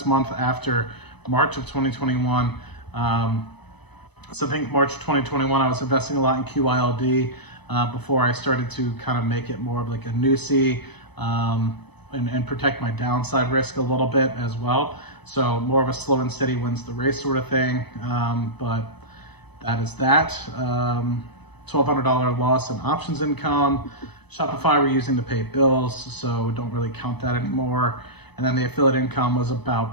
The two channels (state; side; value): late; right; 0.98 ms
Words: month after March of 2021. So I think March 2021, I was investing a lot in QYLD before I started to kind of make it more of like a NUSI and protect my downside risk a little bit as well. So more of a slow and steady wins the race sort of thing. But that is that. $1,200 loss in options income. Shopify we're using to pay bills, so don't really count that anymore. And then the affiliate income was